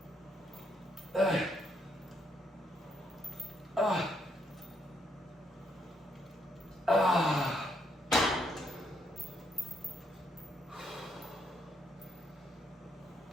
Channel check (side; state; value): both; normal; correlation 0.74